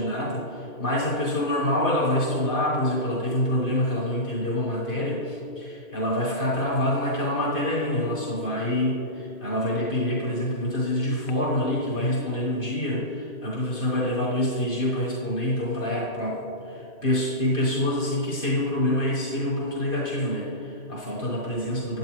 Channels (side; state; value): right; late; 2.5 ms